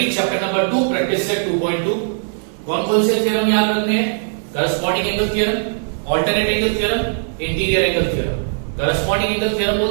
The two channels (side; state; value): left; silent; 63 dB below the other